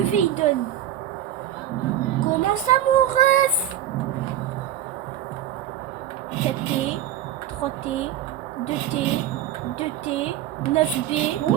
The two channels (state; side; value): quieter; left; 11.2 dB